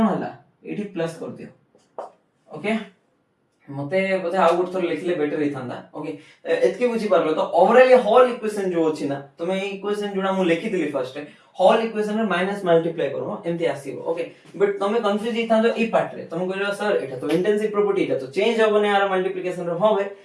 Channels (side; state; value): both; identical; correlation 1.00